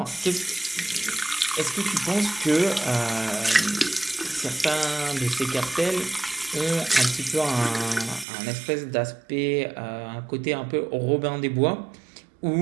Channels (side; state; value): left; drops out; at 8.2 s